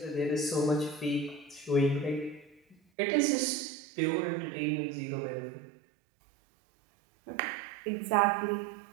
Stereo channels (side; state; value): left; drops out; at 2.8 s